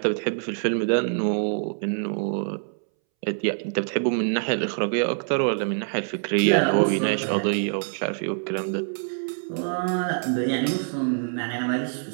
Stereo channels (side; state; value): left; silent; 62 dB below the other